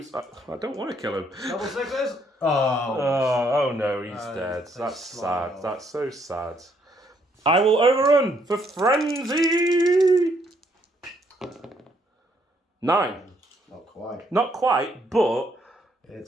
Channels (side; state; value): both; normal; correlation 0.71